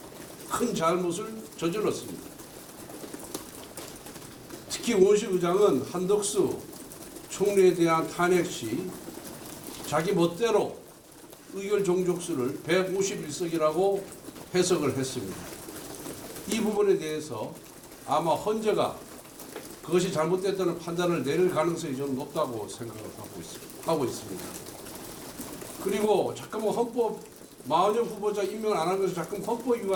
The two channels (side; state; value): both; identical; correlation 1.00